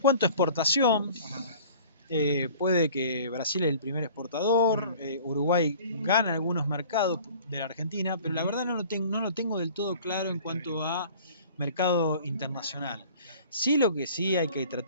exportación, puede que Brasil es el primer exportador, Uruguay gana algunos mercados de la Argentina, pero la verdad no lo tengo del todo claro en cuanto a mercado internacional. Sí, lo que sí hay que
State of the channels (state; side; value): inverted; both; correlation -0.46